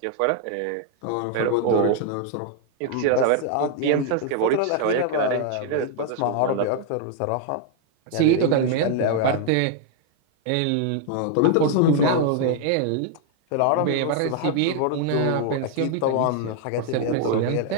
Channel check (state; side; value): different; both; correlation 0.00